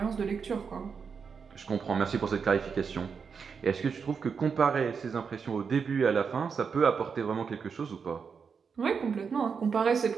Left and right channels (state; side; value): quieter; left; 6.0 dB